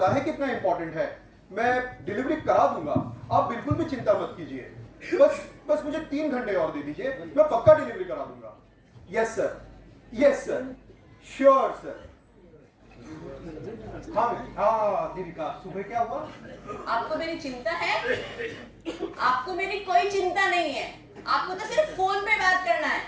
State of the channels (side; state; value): both; identical; correlation 1.00